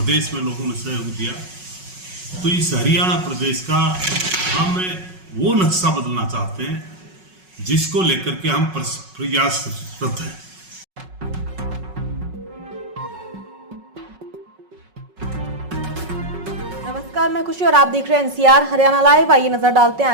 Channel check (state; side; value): late; left; 5.4 ms